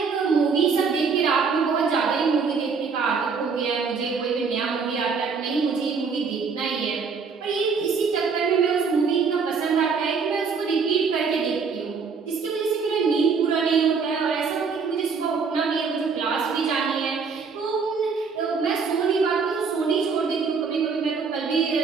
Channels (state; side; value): quieter; left; 5.4 dB